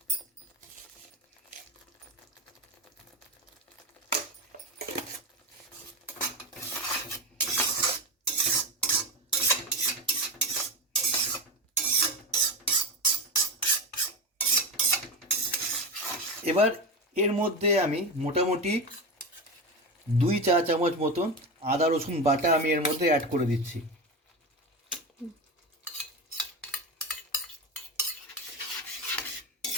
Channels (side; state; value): both; normal; correlation 0.20